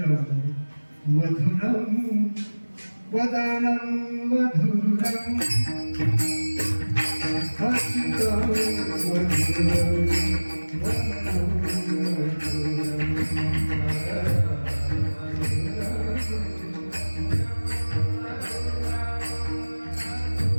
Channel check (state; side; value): inverted; both; correlation -1.00